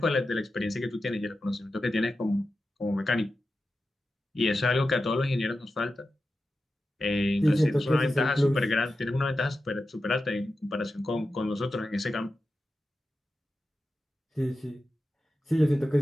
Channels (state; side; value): normal; both; correlation 0.92